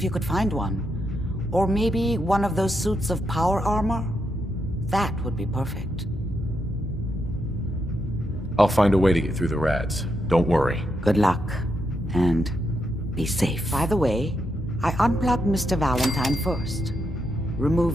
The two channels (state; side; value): normal; both; correlation 0.82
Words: you could find one. Or maybe one of those suits of power armor? That would be perfect. I'll find a way to get through the rads. Don't worry. Good luck. And be safe. By the way, I unplugged Mr. Valentine first.